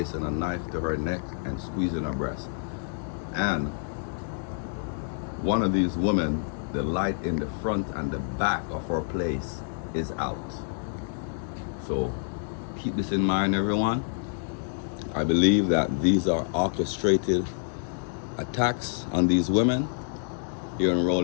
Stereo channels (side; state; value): right; silent; digital silence